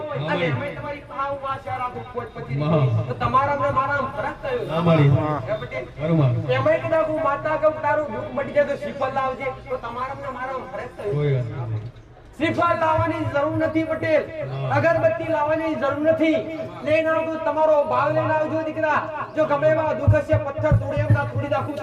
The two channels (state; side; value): identical; both; correlation 1.00